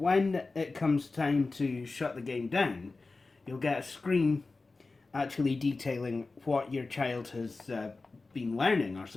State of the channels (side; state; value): right; quieter; 3.7 dB